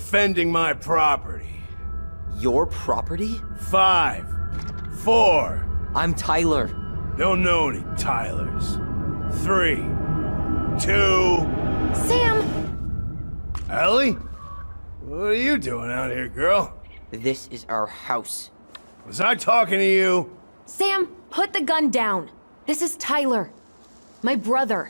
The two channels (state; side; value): inverted; both; correlation -1.00